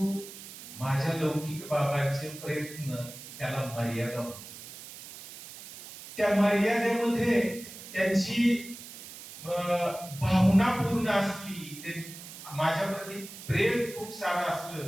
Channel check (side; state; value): right; noise; hiss, 14 dB below the sound